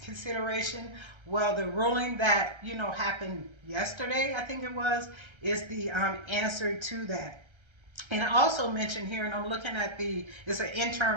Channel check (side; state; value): left; late; 1.3 ms